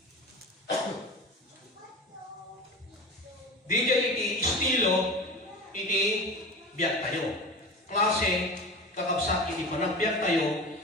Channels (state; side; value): normal; both; correlation 0.30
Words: di jay iti estilo iti biyak tayo. Klase kakabsat iti panagbiyak tayo,